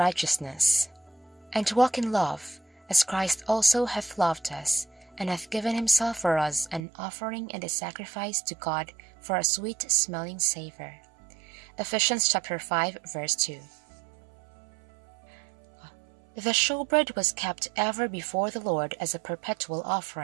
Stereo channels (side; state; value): left; drops out; at 6.8 s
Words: and to walk in love, as Christ also hath loved us, and hath given himself for us an offering and a sacrifice to God for a sweet-smelling savour. Ephesians chapter 5, verse 2. The showbread was kept ever before the Lord as a perpetual